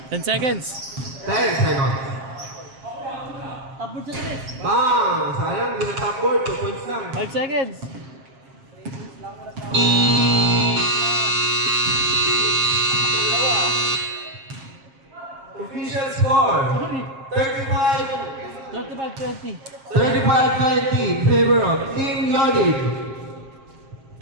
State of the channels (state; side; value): late; left; 7.5 ms